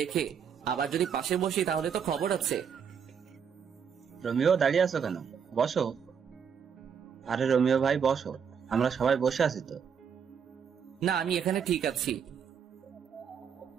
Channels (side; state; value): left; quieter; 7.1 dB